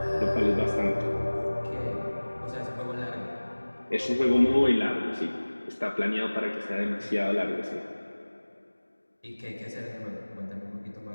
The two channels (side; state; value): both; inverted; correlation -1.00